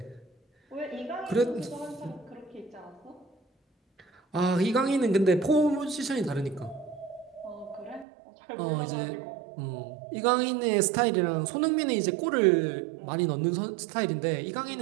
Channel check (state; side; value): drops out; left; at 8.1 s